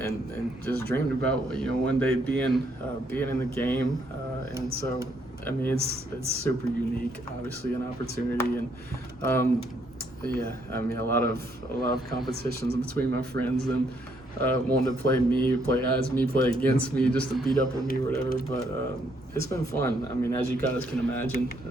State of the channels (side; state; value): both; normal; correlation 0.71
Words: just dreamed about, you know, one day being in the game, and so I mean, it's super unique, obviously, an opportunity, and yeah, I mean, a lot of competitions between my friends and wanting to play as me, play against me, just to beat up on me or whatever. But it's been fun. I mean, as you guys can imagine,